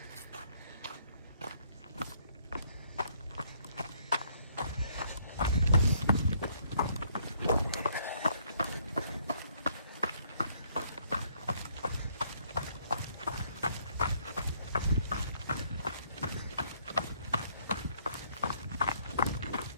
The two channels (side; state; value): both; inverted; correlation -0.66